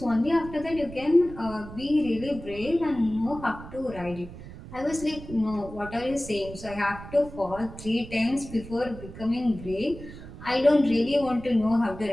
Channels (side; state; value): right; noise; rumble, 14 dB below the sound